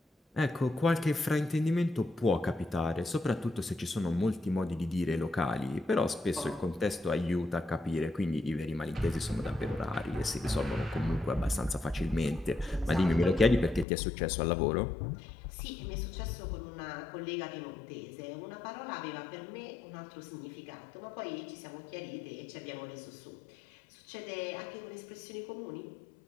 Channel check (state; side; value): drops out; right; at 13.9 s